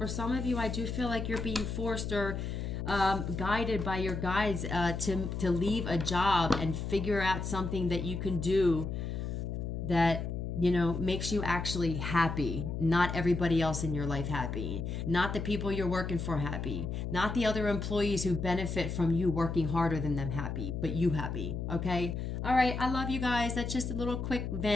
some of you, I do feel like you're being forced or guided by your guides to leave a job and figure out something that you can do that, you know, makes you actually happy. Not everybody else in your life happy. Not the people you're working for happy. Not the other employees who benefit from you working harder than them happy, but you happy, okay? All right, I love you guys. That's just a little quick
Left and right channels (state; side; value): noise; left; hum, 4 dB below the sound